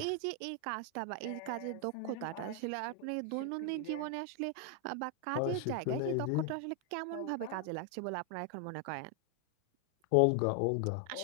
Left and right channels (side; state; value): both; different; correlation 0.00